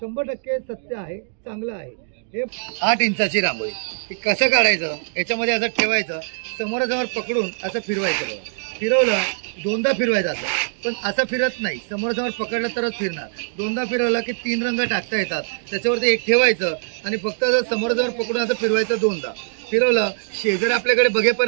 सत्य आहे, चांगलं आहे. हे 8 इंचाची रांगोळी. हे कसं काढायचं, याच्यामध्ये असं ठेवायचं, समोरासमोर पकडून असं फिरवायचं. बघा, फिरवलं, दोनदा फिरवायचं असं, पण असं फिरत नाही, समोरासमोर पकडलं तरच फिरणार. दोनदा फिरवलं की 3 रंग टाकता येतात. त्याच्यावरती एक ठेवायचं आणि फक्त समोरासमोर पकडून असं फिरवायचं. दोनदा फिरवलं, शेजारी आपल्याकडे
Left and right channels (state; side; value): silent; left; digital silence